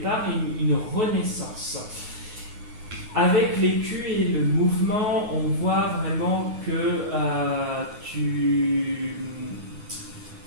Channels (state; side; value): late; left; 9.4 ms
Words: et une renaissance. Avec l'écu et le mouvement, on voit vraiment que